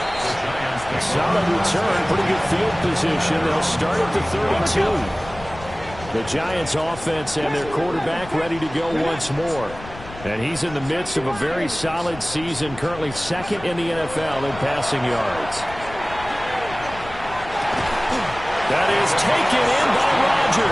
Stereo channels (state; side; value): noise; left; rumble, 15 dB below the sound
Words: A solid return, pretty good field position. They'll start at the 32. The Giants offense and their quarterback ready to go once more. And he's in the midst of a very solid season, currently second in the NFL in passing yards. That is taken in by